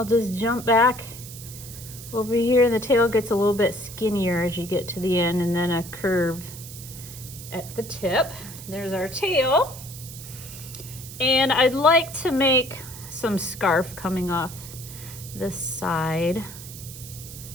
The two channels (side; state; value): right; noise; hiss, 13 dB below the sound